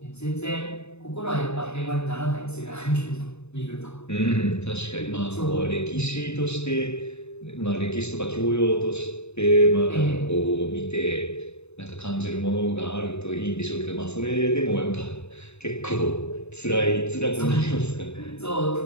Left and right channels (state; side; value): late; right; 0.81 ms